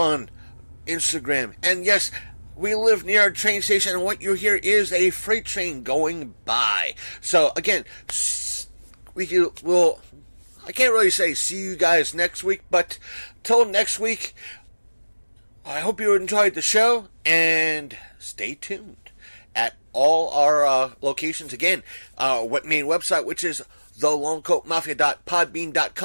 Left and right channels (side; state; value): both; inverted; correlation -1.00